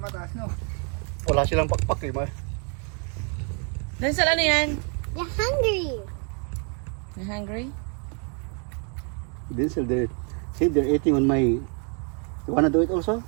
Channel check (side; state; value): left; quieter; 38.8 dB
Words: no? Wala silang pakpak eh. Denzel, ano yan? You're hungry. You hungry? Denzel, they're eating on my... You wanna do it also?